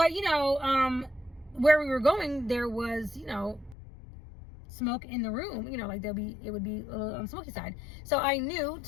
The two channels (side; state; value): right; drops out; at 3.8 s